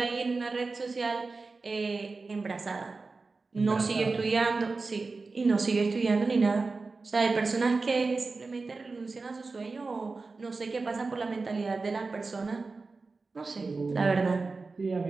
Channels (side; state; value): left; quieter; 3.9 dB